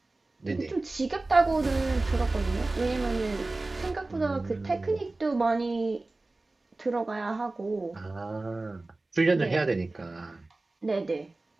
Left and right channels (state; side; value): quieter; left; 3.1 dB